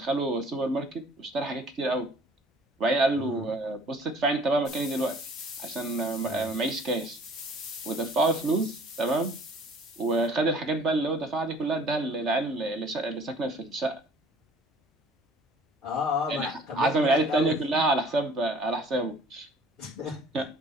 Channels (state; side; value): normal; both; correlation 0.52